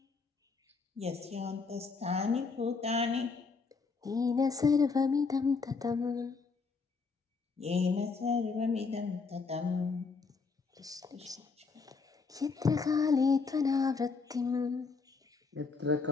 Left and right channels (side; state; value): right; quieter; 4.7 dB